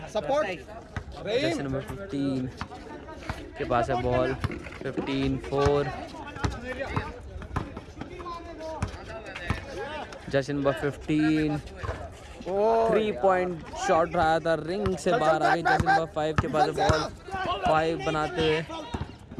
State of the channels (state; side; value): identical; both; correlation 1.00